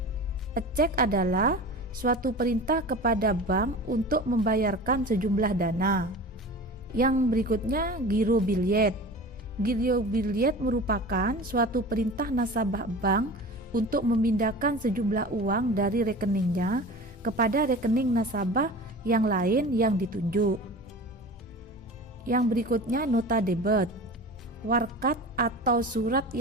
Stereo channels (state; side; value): normal; both; correlation 0.35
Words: Cek adalah suatu perintah kepada bank untuk membayarkan sejumlah dana. Yang berikutnya giro billet. Giro billet merupakan suatu perintah nasabah bank untuk memindahkan sejumlah uang dari rekeningnya kepada rekening nasabah yang lain yang ditunjuk. Yang berikutnya nota debit. Warkat atau surat